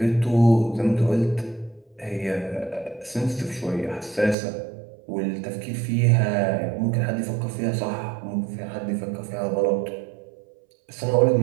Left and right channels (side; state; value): left; drops out; at 4.4 s